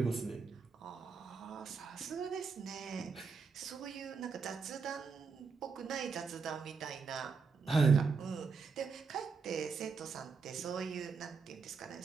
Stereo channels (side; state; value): left; quieter; 5.1 dB